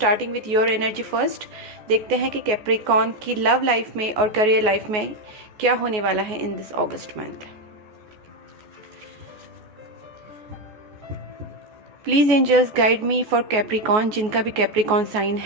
with your energy first. देखते हैं कि कैप्रिकॉन की लव लाइफ में और करियर लाइफ में क्या होने वाला है in this August month. Please angels guide me for Capricorn. जिनका भी कैप्रिकॉन साइन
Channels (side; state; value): left; late; 14 ms